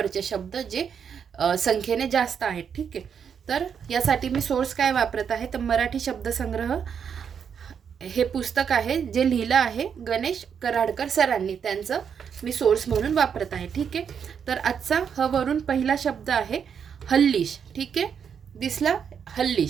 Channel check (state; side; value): quieter; left; 7.3 dB